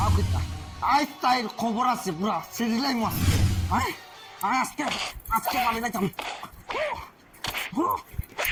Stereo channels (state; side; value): identical; both; correlation 1.00